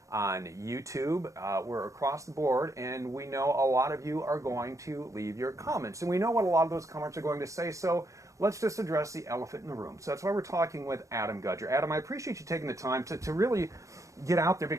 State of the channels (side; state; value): left; late; 0.15 ms